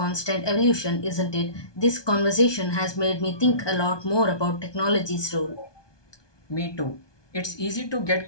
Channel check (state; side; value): late; right; 1.2 ms